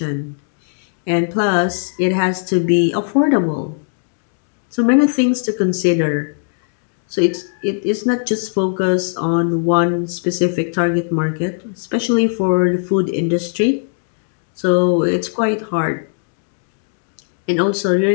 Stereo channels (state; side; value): silent; right; digital silence